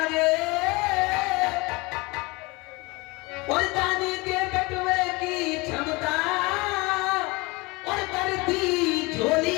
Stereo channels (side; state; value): right; quieter; 25.0 dB